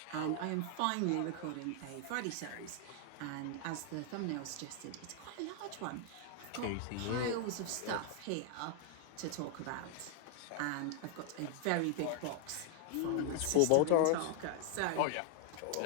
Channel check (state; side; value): different; both; correlation 0.00